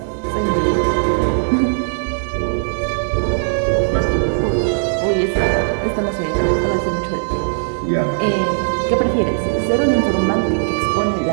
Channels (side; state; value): left; silent; 67 dB below the other